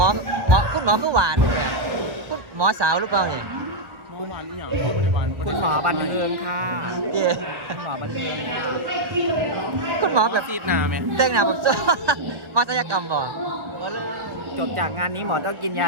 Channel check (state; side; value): late; left; 1.6 ms